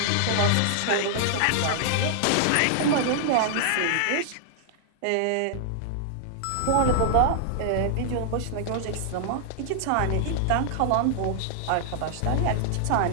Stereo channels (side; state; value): both; different; correlation -0.01